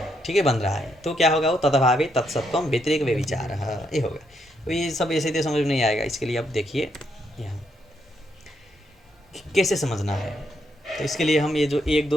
ठीक है, बन रहा है, तो क्या होगा? वो तदभावे तत्सत्वम व्यतिरेक व्यभिचारः, ये होगा। तो ये सब ऐसे तो समझ में नहीं आएगा। इसके लिए अब देखिए यहाँ कैसे समझना है। तो इसके लिए हम ये जो 1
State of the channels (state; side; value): normal; both; correlation 0.77